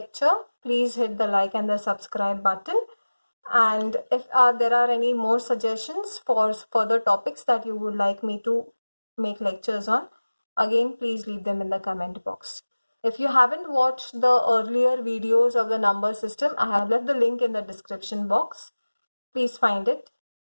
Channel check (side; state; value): both; inverted; correlation -1.00